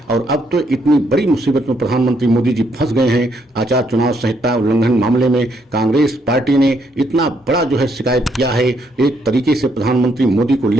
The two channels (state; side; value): normal; both; correlation 0.73